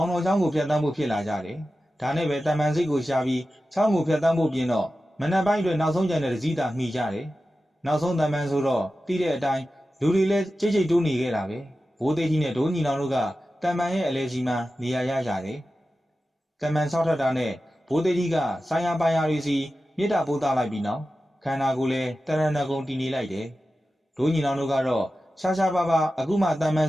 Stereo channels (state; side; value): normal; both; correlation 0.93